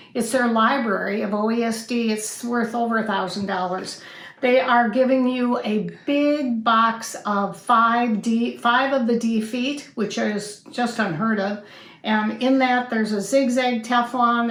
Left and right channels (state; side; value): identical; both; correlation 1.00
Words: It's their library of OESD. It's worth over $1,000. They are giving you a big box of five of the D feet, which is just unheard of. And in that, there's a zigzag Teflon,